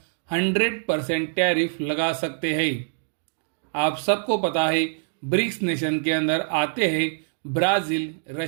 100% टैरिफ लगा सकते हैं। आप सबको पता है ब्रिक्स नेशन के अंदर आते हैं ब्राज़ील,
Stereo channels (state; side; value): silent; left; digital silence